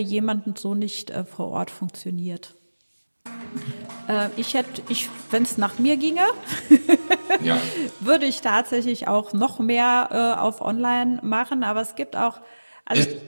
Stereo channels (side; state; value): both; inverted; correlation -1.00